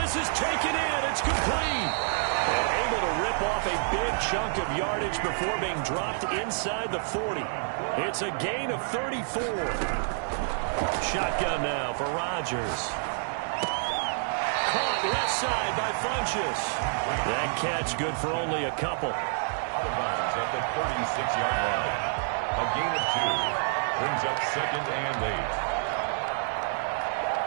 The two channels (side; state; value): left; silent; 55 dB below the other